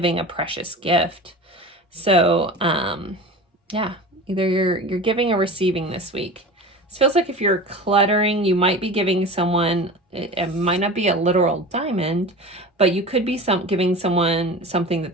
a precious gift. So yeah, either you're giving or receiving this week. It feels like if you're cluttering, you might be giving someone, it might not be a literal diamond, but you could be giving someone something that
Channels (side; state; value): both; normal; correlation 0.33